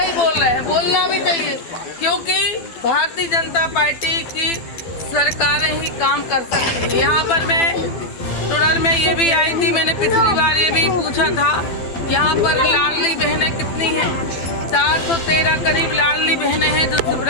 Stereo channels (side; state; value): right; late; 12 ms